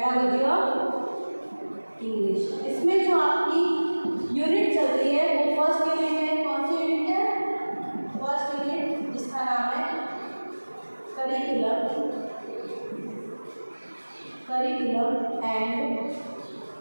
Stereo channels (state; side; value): inverted; both; correlation -1.00